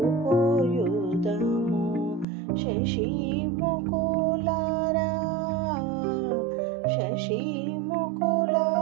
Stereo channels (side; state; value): left; drops out; at 2.2 s